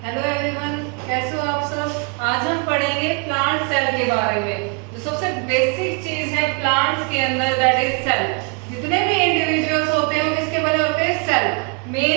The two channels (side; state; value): left; quieter; 34.5 dB